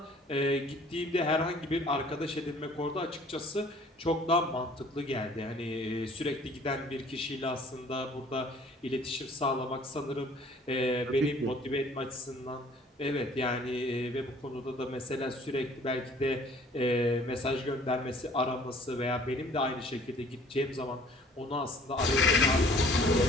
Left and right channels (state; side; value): normal; both; correlation 0.54